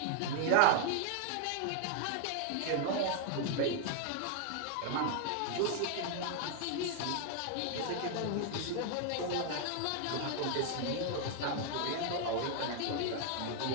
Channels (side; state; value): both; different; correlation 0.00